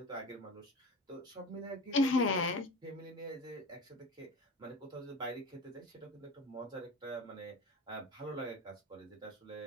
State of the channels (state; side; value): normal; both; correlation 0.33